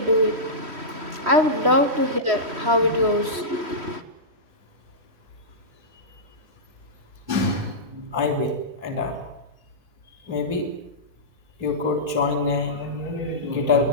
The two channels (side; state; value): left; late; 3.1 ms